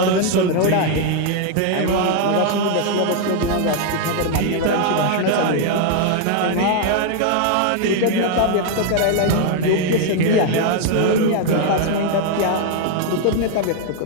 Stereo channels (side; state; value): both; different; correlation 0.00